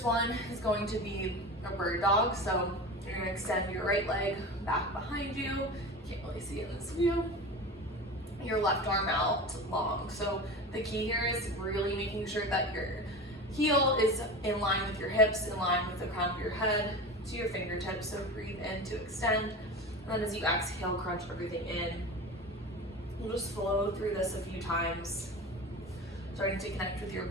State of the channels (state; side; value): normal; both; correlation 0.30